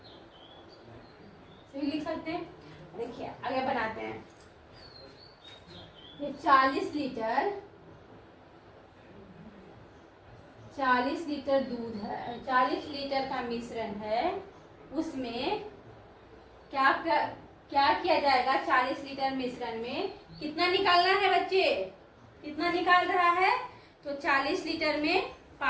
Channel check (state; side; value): identical; both; correlation 1.00